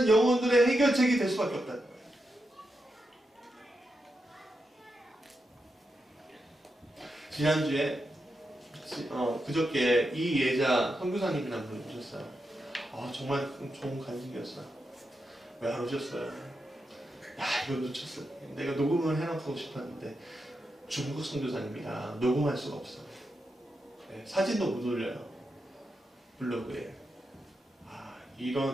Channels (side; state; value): both; normal; correlation 0.86